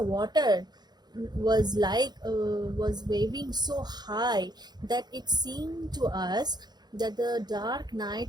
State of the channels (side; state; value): left; late; 0.20 ms